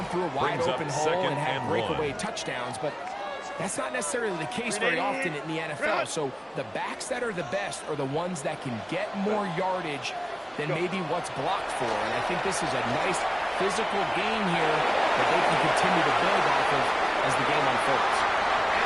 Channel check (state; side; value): identical; both; correlation 1.00